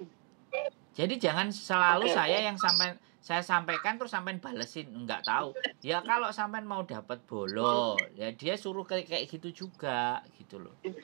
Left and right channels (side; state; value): left; quieter; 38.2 dB